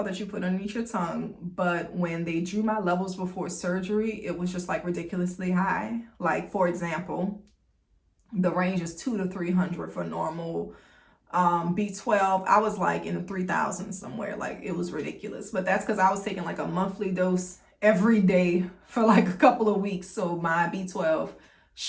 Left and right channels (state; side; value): identical; both; correlation 1.00